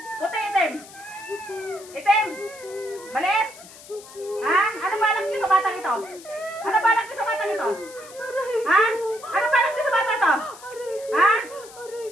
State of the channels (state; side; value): noise; left; hiss, 19 dB below the sound